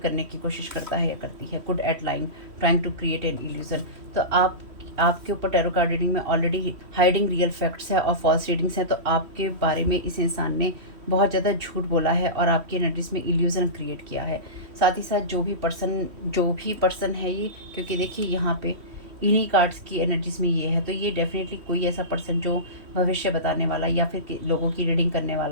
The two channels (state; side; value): late; left; 3.1 ms